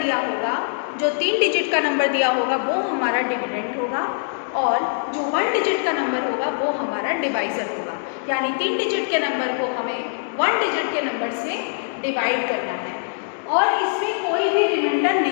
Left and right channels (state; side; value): silent; right; digital silence